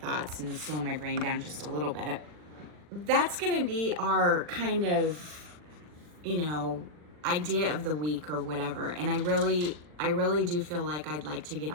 and slow my brain down just a little bit. That's going to be our kind of, idea of the week or whatever. And I really do feel like I'd like to get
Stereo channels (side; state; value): left; late; 40 ms